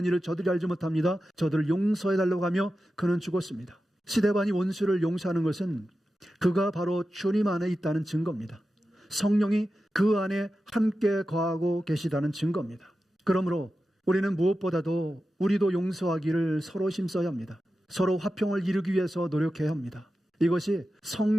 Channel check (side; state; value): both; normal; correlation 0.92